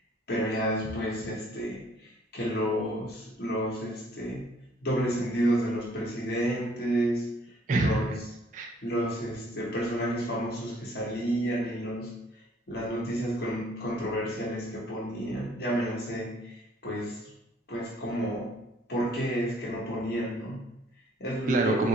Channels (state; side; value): normal; both; correlation 0.61